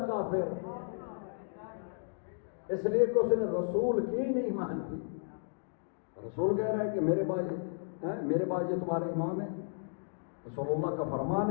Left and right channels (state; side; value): silent; right; digital silence